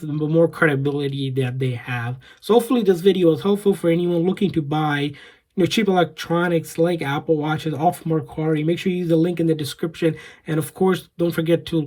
the more credibility that they have. So hopefully this video is helpful for anyone looking to buy cheap electronics like Apple Watches off Mercari. Make sure you use the link in the description, and of course don't forget to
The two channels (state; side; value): identical; both; correlation 1.00